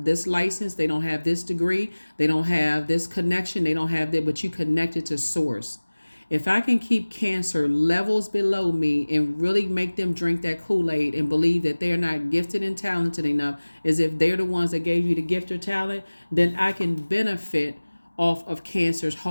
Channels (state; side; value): inverted; both; correlation -1.00